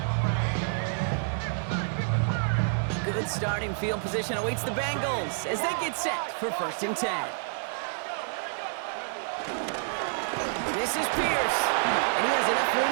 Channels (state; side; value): silent; left; 59 dB below the other